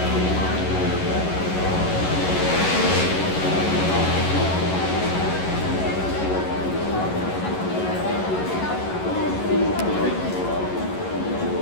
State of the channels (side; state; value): right; late; 11 ms